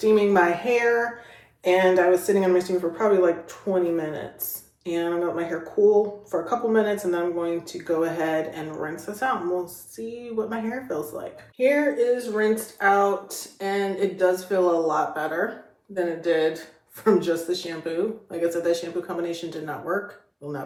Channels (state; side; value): identical; both; correlation 1.00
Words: my hair, and I was sitting on my steamer for probably like 20 minutes. And I'm gonna let my hair cool for a couple minutes, and then I'm going to go ahead and rinse this out, and we'll see what my hair feels like. Hair is rinsed out, and it does feel a lot better than it did from just the shampoo. Like I said, that shampoo combination did not work. Will